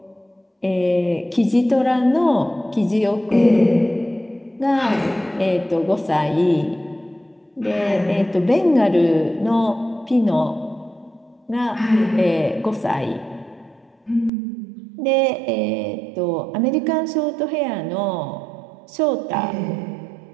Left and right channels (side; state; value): left; drops out; at 14.3 s